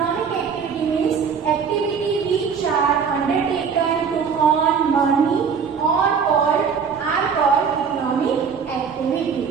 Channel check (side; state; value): left; quieter; 6.3 dB